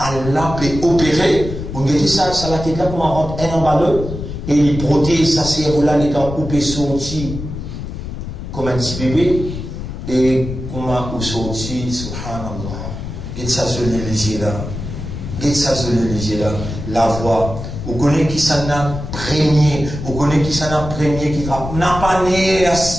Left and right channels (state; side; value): noise; left; rumble, 8 dB below the sound